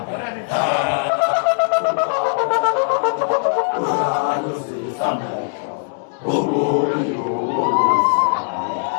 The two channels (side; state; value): right; silent; 66 dB below the other